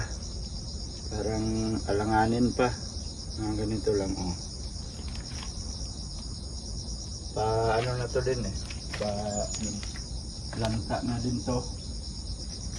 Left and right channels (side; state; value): both; identical; correlation 1.00